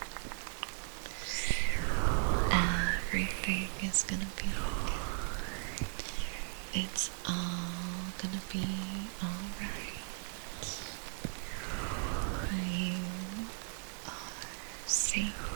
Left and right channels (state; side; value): silent; left; 53 dB below the other